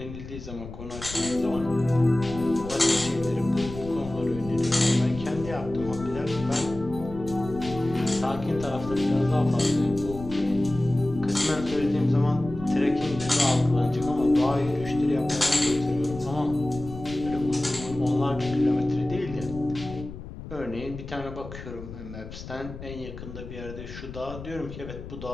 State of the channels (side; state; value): left; noise; rumble, 12 dB below the sound